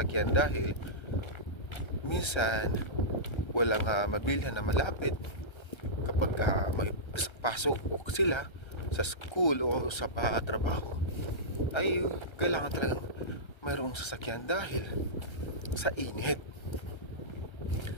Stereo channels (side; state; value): right; late; 1.3 ms